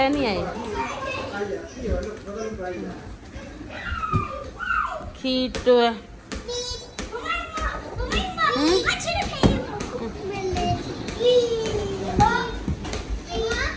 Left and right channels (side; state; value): both; identical; correlation 1.00